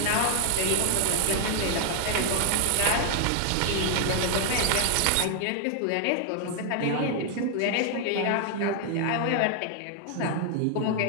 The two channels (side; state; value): both; different; correlation 0.00